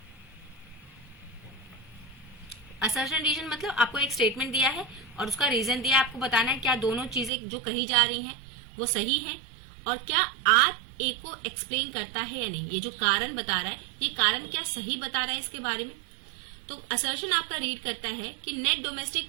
असर्शन रीजन मतलब आपको एक स्टेटमेंट दिया है और उसका रीजन दिया है, आपको बताना है क्या दोनों चीजें जो कही जा रही हैं वो सही है और क्या आर ए को एक्सप्लेन करता है या नहीं। ये जो कारण बता रहा है ये कारण क्या सही बता रहा है इसके बारे में। तो असर्शन आपका रीड करता है कि net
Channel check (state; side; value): drops out; left; at 7.3 s